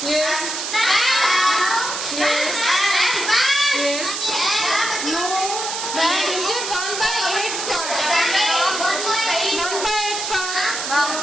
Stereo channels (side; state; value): right; noise; hiss, 4 dB below the sound